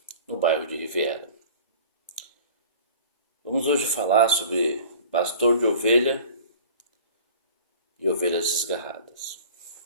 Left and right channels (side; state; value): both; inverted; correlation -0.43